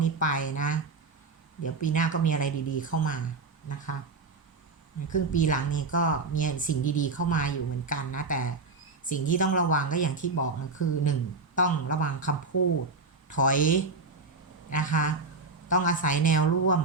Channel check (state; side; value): quieter; left; 3.9 dB